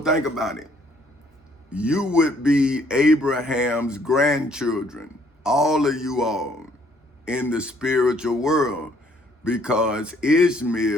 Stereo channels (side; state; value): both; normal; correlation 0.64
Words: about it. You would be Abraham's grandchildren, all of you all, in the spiritual world, because